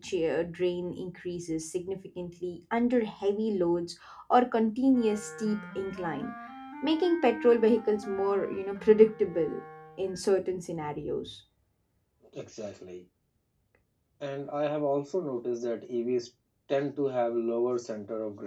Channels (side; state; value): both; identical; correlation 1.00